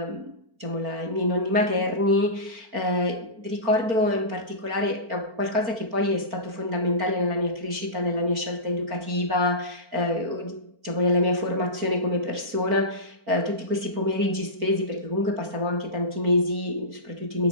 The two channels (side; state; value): left; late; 4.4 ms